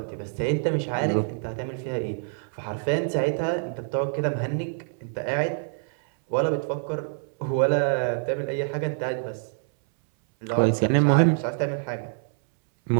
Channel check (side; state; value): left; silent; 61 dB below the other